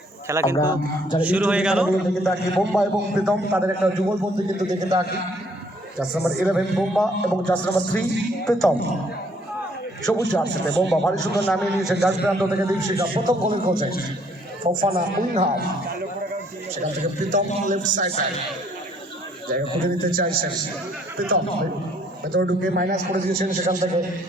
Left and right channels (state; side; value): normal; both; correlation 0.64